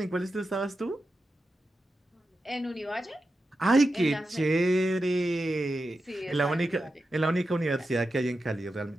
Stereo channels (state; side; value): normal; both; correlation 0.90